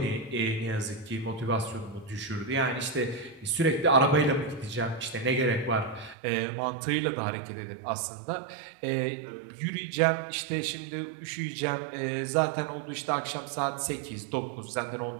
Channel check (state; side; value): drops out; left; at 6.2 s